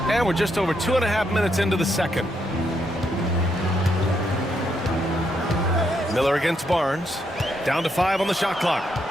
And we're just over 2.5 minutes into the second. Miller against Barnes. Down to 5 on the shot clock.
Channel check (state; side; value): normal; both; correlation 0.78